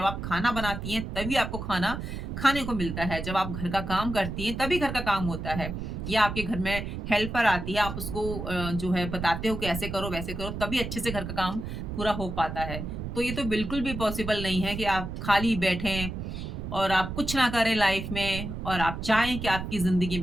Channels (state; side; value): noise; right; rumble, 6 dB below the sound